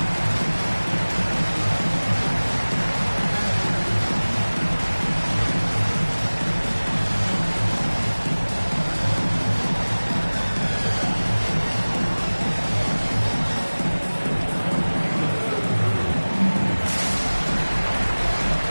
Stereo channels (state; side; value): inverted; both; correlation -1.00